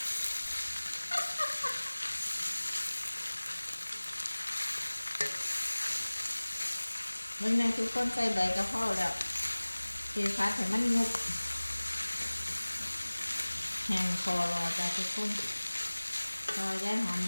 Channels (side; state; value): both; inverted; correlation -1.00